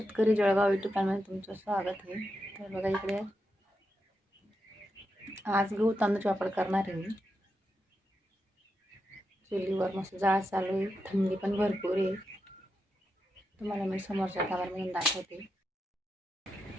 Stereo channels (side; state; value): both; normal; correlation 0.86